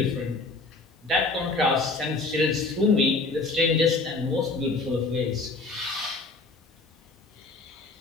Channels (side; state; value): right; quieter; 3.6 dB